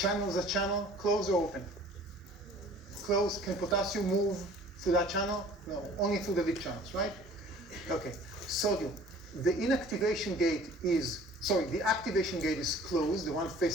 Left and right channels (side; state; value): both; normal; correlation 0.49